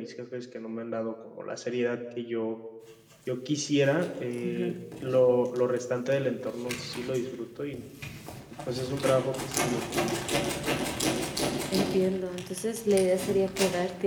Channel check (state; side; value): identical; both; correlation 1.00